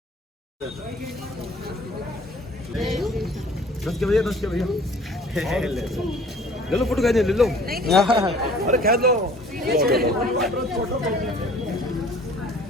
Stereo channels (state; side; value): normal; both; correlation 0.51